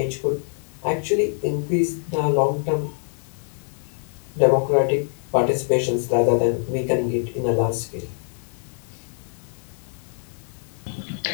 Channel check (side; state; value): right; silent; digital silence